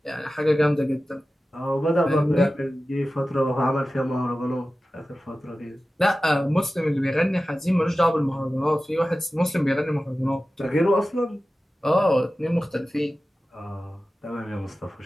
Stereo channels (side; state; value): both; normal; correlation 0.95